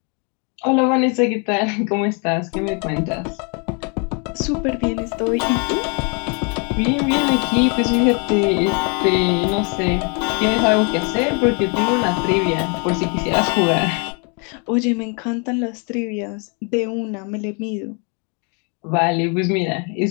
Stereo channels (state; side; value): quieter; right; 35.7 dB